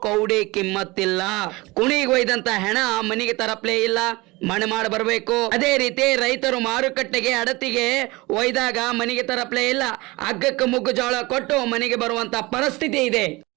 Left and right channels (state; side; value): quieter; left; 22.7 dB